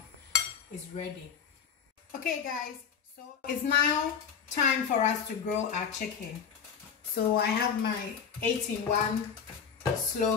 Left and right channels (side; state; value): right; quieter; 7.0 dB